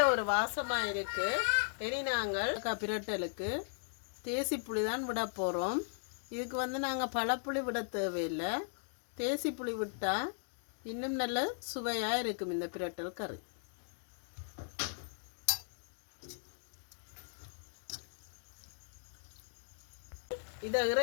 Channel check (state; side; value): silent; right; digital silence